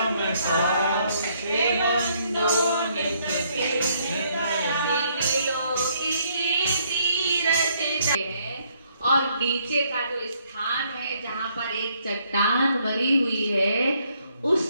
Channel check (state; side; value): inverted; both; correlation -0.69